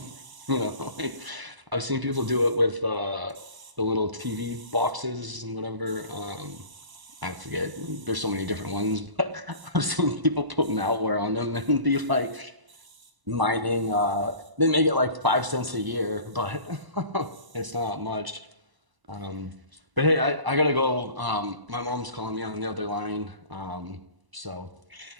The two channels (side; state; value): left; late; 1.0 ms